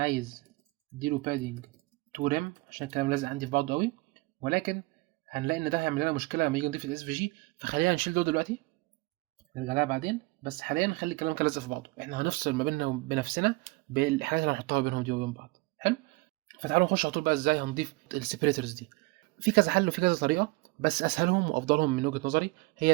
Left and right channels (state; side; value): quieter; left; 23.1 dB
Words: اديله بادنج 2 ريم عشان الكلام لازق عندي في بعضه قوي، ولكن هنلاقي ان ده هيعمل لنا مشكله لما نيجي نضيف الاس في جي، فخلينا نشيل ده دلوقتي نرجع لها بعدين. بس حاليا نخلي الكلام كده لازق في بعضه، احنا هنفصل ما بيننا وبنفسنا بالحاجات اللي هنحطها بينهم دي وبين بعض. حلو. فتعالوا نخش على طول بقى ازاي هنضيف السيبريتورز دي. في كذا حل وفي كذا طريقه، بس اسهلهم وافضلهم من وجهه نظري